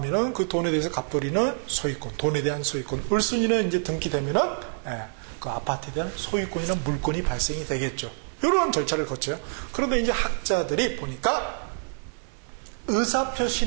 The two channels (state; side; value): silent; left; digital silence